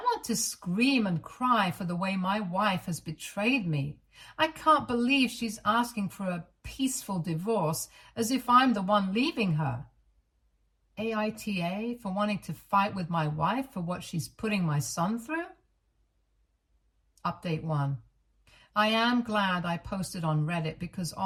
to scream and cry for the way my wife has betrayed me. I can't believe she's asking for a peaceful divorce as if I'm the one leaving her. AITA for wanting to fight with my wife for what she's putting my son through? Update 1. I am glad I posted on Reddit because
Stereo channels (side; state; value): both; identical; correlation 1.00